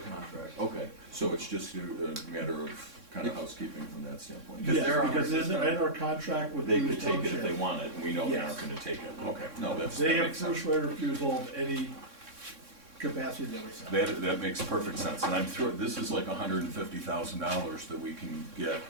Okay, so it's just a matter of kind of housekeeping from that standpoint? Because Yes, they're on our because in system. our contract with They Bruce could take it if Township, they want it, and we know they Yes. aren't gonna take it. Okay, no, they that have makes sense. first right of refusal of any capacity that we sell. That makes perfect sense, and I'm sure, this is like $150,000 that we can get,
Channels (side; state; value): left; late; 3.6 ms